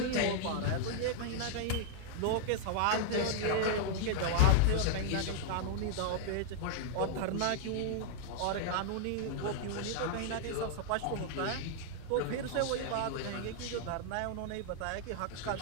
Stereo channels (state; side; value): different; both; correlation -0.01